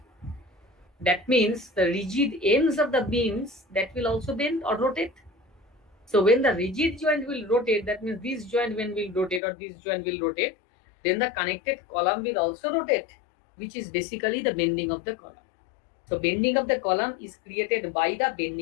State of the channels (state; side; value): drops out; right; at 9.4 s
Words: that means the rigid ends of the beams that will also bend or rotate. So when the rigid joint will rotate, that means this joint when will rotate or this joint will rotate, then the connected column will also rotate, which is basically the bending of the column. So bending of the column is created by the